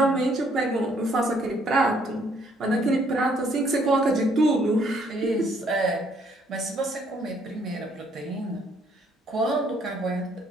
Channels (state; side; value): normal; both; correlation 0.66